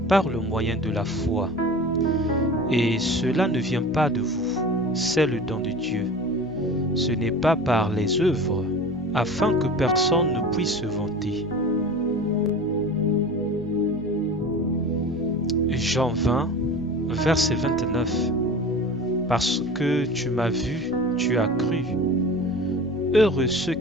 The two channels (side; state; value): left; noise; hum, 20 dB below the sound